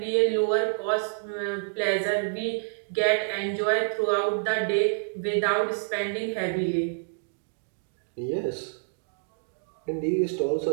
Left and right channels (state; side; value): silent; left; digital silence